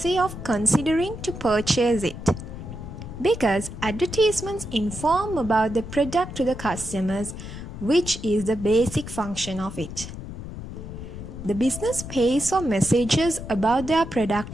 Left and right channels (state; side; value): noise; left; rumble, 10 dB below the sound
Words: of considering to purchase it, because advertisements inform about the product to the customers, which is the basic function of it. The business pays for messages about their